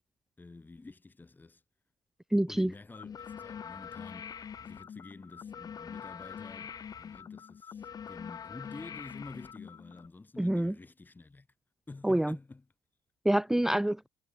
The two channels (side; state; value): both; normal; correlation 0.95